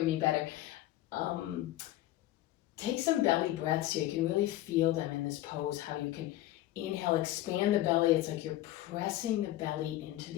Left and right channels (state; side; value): quieter; right; 15.2 dB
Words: me better. Take some belly breaths here. You can really feel them in this pose, how you can inhale, expand the belly. It's like you're pressing the belly into